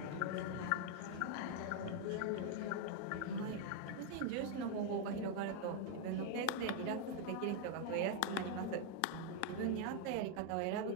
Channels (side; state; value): both; different; correlation 0.00